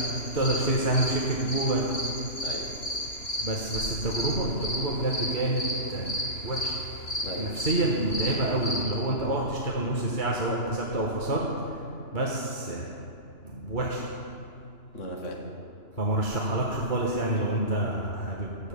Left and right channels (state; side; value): late; right; 2.9 ms